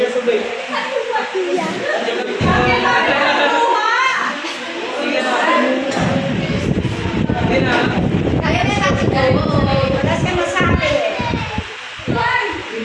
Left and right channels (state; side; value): identical; both; correlation 1.00